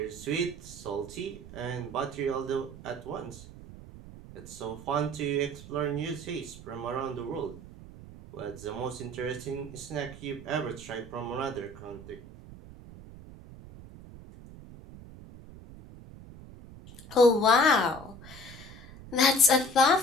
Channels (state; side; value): noise; right; rumble, 16 dB below the sound